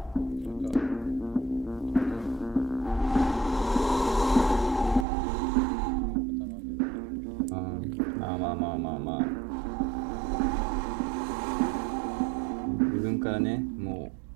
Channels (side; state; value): left; drops out; at 5.1 s